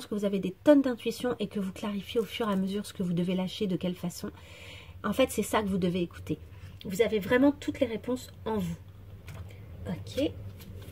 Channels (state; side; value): identical; both; correlation 1.00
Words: que vous avez des tonnes d'intuition et que vous clarifiez au fur et à mesure ce que vous devez lâcher, de quelle façon. En fait, c'est ça que vous devez écouter. Vous avez vraiment toutes les réponses en vous. Ok.